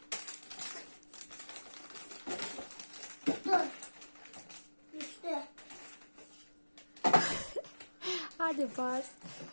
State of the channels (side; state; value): both; inverted; correlation -1.00